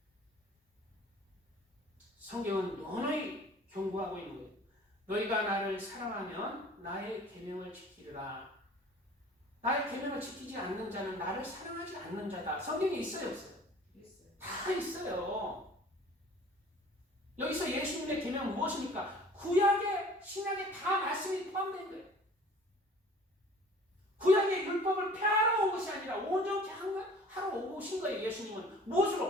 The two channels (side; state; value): both; normal; correlation 0.48